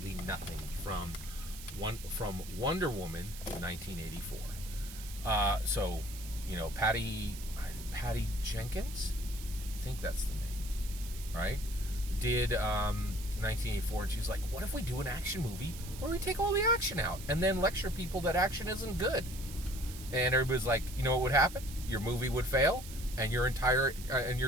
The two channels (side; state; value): right; noise; hiss, 14 dB below the sound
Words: nothing from Wonder Woman in 1984. Patty Jenkins, I think that's the name, right? Did 1984, and she was like, what if we do an action movie where we take all the action out and then lecture people that action isn't good? And everybody's like, you know what would happen? Your movie would fail, and your entire